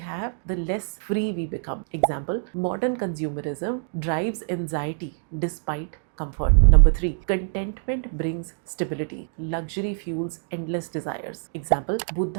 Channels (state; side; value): silent; left; digital silence